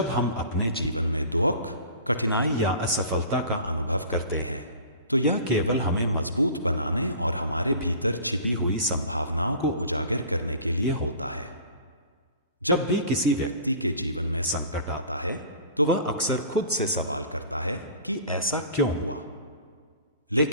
हम अपने जीवन में दुख, कठिनाई या असफलता का अनुभव करते हैं, तो यह केवल हमें मजबूत बनाने और हमारे भीतर छिपी हुई संभावनाओं को उजागर करने के लिए होता है। जब भी किसी व्यक्ति के जीवन में संकट आता है, तो वह अक्सर खुद से सवाल करता है कि ऐसा क्यों हुआ।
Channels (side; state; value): both; inverted; correlation -0.43